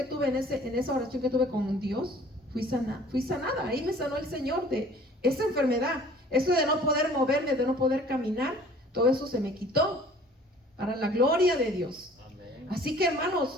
tuve con Dios, fui sanada, ahí me sanó el Señor de esa enfermedad, eso de no poder moverme, de no poder caminar, todo eso se me quitó, para la gloria de Dios. Amén. Así que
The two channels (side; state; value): both; normal; correlation 0.51